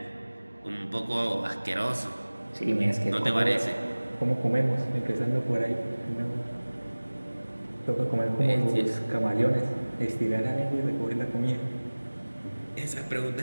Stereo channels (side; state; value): both; inverted; correlation -1.00